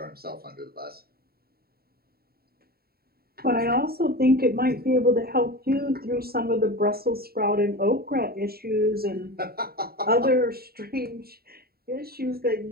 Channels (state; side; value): late; left; 0.45 ms